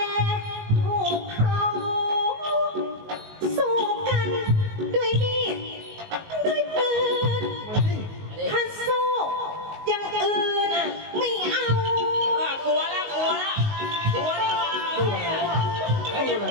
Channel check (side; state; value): left; late; 19 ms